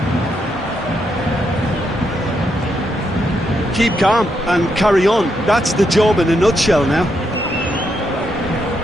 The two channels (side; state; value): both; normal; correlation 0.80